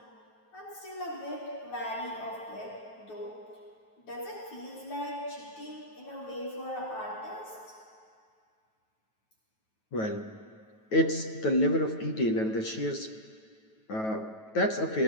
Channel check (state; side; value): late; right; 9.2 ms